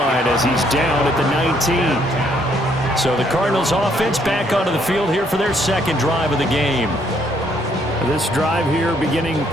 as he's down at the 19. So the Cardinals offense back onto the field here for their second drive of the game. This drive here beginning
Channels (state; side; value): normal; both; correlation 0.69